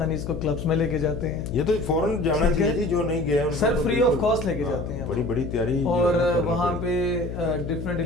اس کو کلبس میں لے کے جاتے ہیں. یہ تو فوراً جانا چاہیے جو نہیں گیا سر, فری آف کاسٹ لے کے جاتے ہیں. بڑی بڑی تیاری. اور وہاں پہ ڈفرینٹ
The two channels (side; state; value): left; noise; hum, 7 dB below the sound